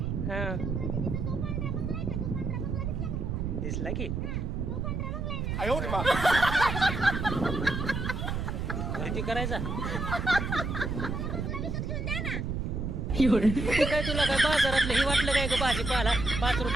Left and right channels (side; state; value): right; noise; rumble, 2 dB below the sound